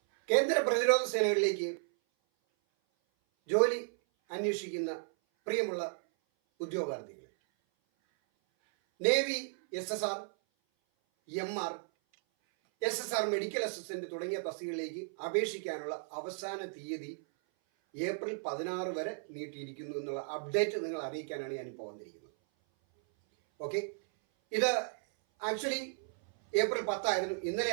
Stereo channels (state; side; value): silent; left; 55 dB below the other